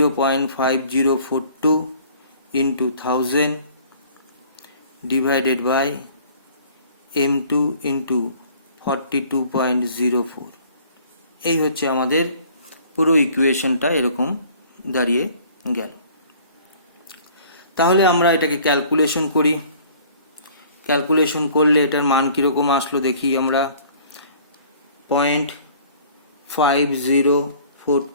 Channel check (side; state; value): both; inverted; correlation -0.53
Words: into 1000 divided by M2 into 42.04। এই হচ্ছে আমাদের পুরো ইকুয়েশনটা, এরকম দাঁড়িয়ে গেল। তাহলে আমরা এটাকে ক্যালকুলেশন করি। ক্যালকুলেশন করলে এটার মান কীরকম আসলো দেখি আমরা।